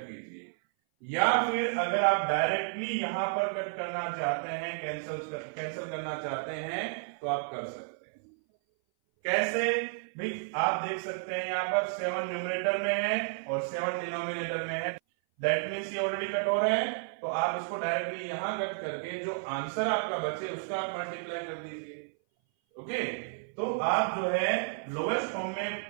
कीजिए, या फिर अगर आप डायरेक्टली यहां पर कट करना चाहते हैं, कैंसिल करना चाहते हैं तो आप कर सकते हैं। कैसे भाई, आप देख सकते हैं यहां पर 7 न्यूमरेटर में है और 7 डिनोमिनेटर में है, दैट मीन्स ये ऑलरेडी कट हो रहा है। तो आप इसको डायरेक्टली यहां कट करके जो आंसर आपका बचे उसका आप मल्टीप्लाई कर दीजिए, ओके। तो आप जो है लोवेस्ट फॉर्म में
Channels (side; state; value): left; silent; 57 dB below the other